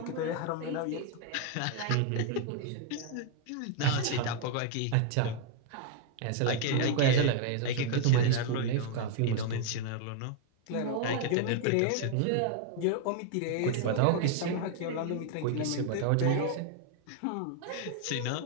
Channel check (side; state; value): both; different; correlation 0.00